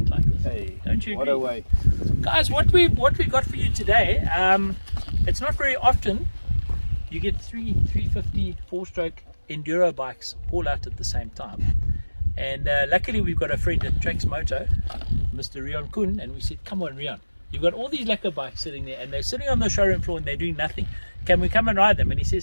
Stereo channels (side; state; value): both; inverted; correlation -1.00